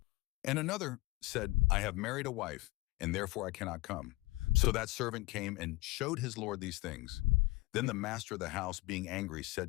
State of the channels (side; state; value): right; quieter; 21.6 dB